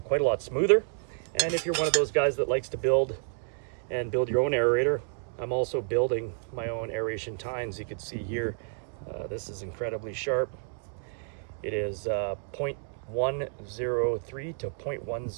quite a lot smoother. And if you're one of those guys that likes to build your own aerator, I'm also building my own aeration tines. You can see here, this is incredibly sharp. It is 0.103 to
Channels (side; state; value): left; silent; 58 dB below the other